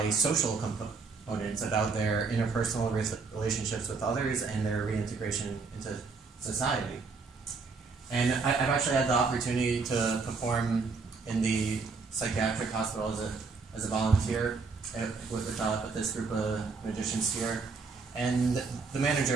social components about their interpersonal relationships with others and their reintegration into society. And I've actually had the opportunity to perform in the psychiatric hospital as a volunteer with this group of magicians here, and the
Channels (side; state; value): left; quieter; 4.5 dB